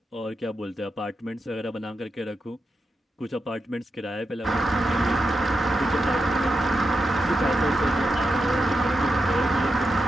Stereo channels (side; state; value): both; normal; correlation 0.87